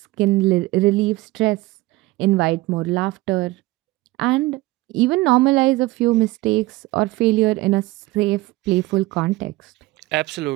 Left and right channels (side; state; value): left; quieter; 20.1 dB